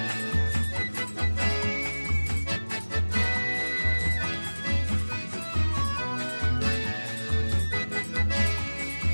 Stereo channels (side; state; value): both; inverted; correlation -1.00